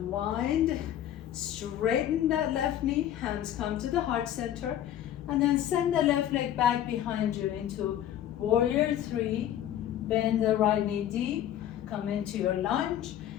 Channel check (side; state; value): right; quieter; 11.4 dB